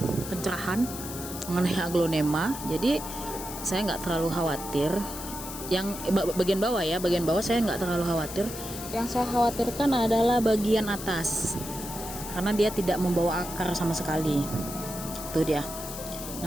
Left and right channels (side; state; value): left; noise; hiss, 10 dB below the sound